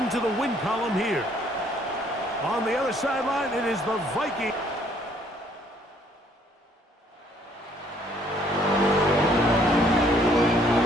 the win column here. On the other sideline, it is the Vikings.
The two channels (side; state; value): both; normal; correlation 0.63